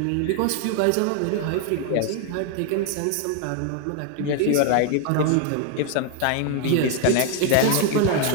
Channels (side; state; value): both; different; correlation 0.00